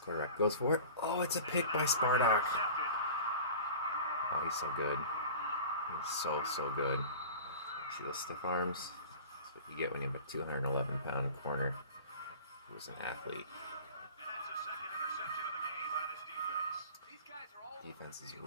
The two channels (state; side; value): inverted; both; correlation -0.39